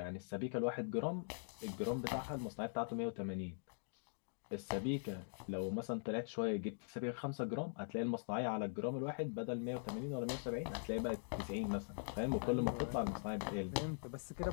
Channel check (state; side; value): silent; right; digital silence